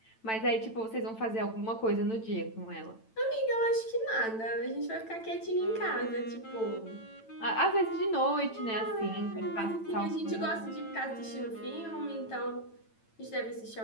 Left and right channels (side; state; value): right; late; 9.0 ms